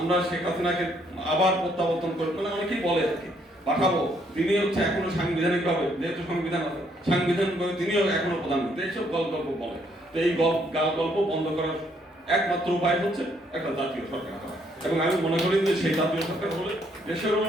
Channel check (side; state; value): both; normal; correlation 0.69